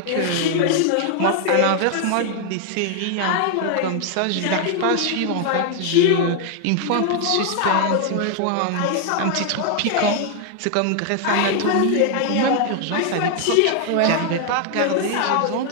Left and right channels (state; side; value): different; both; correlation 0.00